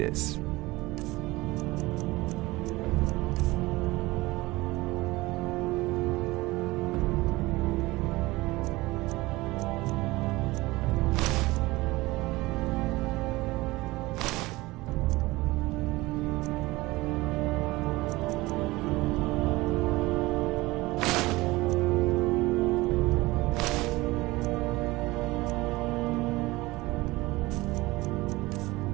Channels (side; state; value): left; quieter; 20.4 dB